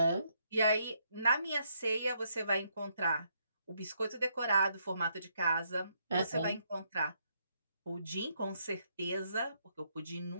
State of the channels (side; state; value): both; inverted; correlation -0.74